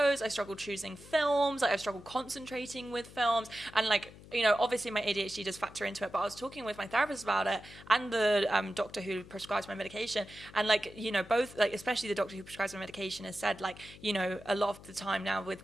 I struggled choosing films, like I've struggled concentrating with films, and like, you know, obviously my ADHD does factor into it, but I was talking with my therapist about it and the doctor who prescribes my medication. And like, you know, both, like, especially the doctor who prescribes my medication has said, like, you know, a lot of the time now with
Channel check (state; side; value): noise; left; hum, 19 dB below the sound